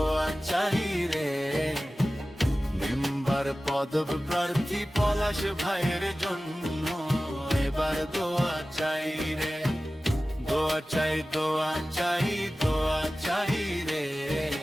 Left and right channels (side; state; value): both; normal; correlation 0.96